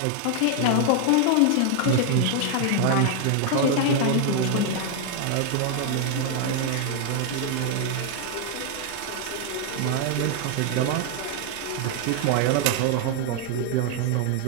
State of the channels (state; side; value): different; both; correlation 0.00